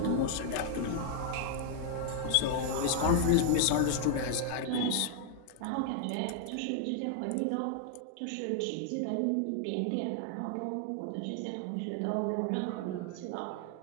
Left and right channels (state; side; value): different; both; correlation 0.00